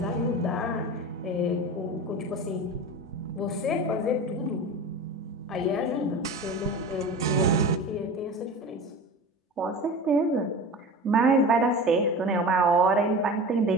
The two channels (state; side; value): normal; both; correlation 0.32